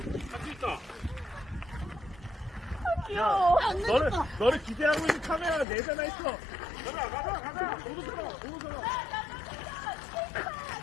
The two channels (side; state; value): right; drops out; at 5.7 s